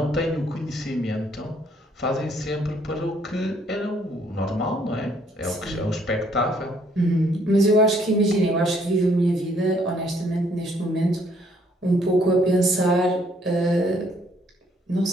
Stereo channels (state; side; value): normal; both; correlation 0.66